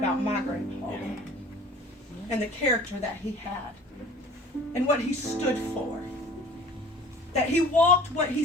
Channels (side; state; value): both; normal; correlation 0.46